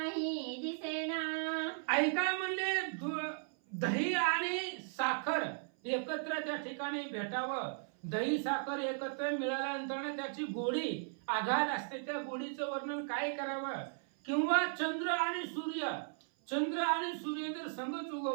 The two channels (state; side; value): silent; left; 53 dB below the other